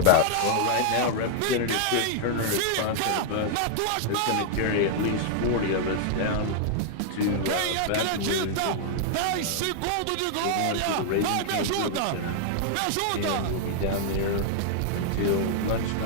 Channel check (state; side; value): different; both; correlation -0.01